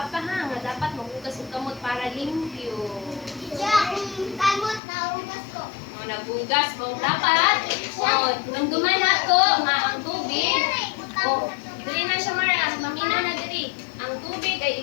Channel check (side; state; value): right; drops out; at 4.8 s